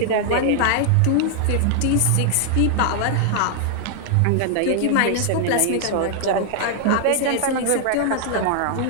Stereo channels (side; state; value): both; different; correlation 0.00